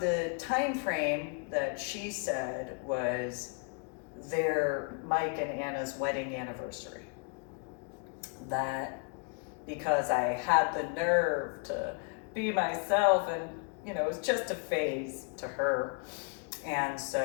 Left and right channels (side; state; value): right; quieter; 35.1 dB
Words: time frame that she said was Mike and Anna's wedding anniversary. That because I had the nerve to be myself, and it was just a phase to her. And